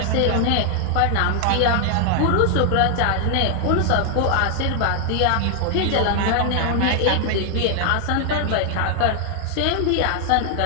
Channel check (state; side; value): different; both; correlation 0.00